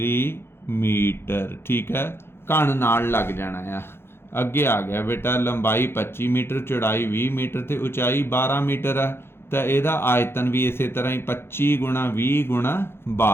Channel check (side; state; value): right; late; 0.11 ms